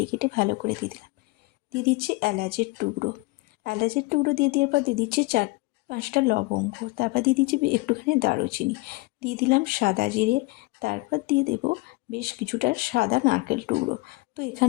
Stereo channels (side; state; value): right; quieter; 23.5 dB